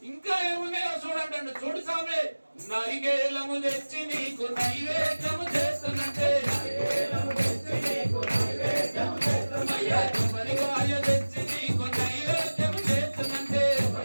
ఇంకా ఏమున్నాయో చూడంటాడు. చూడు స్వామి, నరిగేలము తెచ్చి నీకు నైవేద్యము చేస్తున్నట్టే, కొబ్బరికాయ తెచ్చి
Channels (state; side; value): inverted; both; correlation -1.00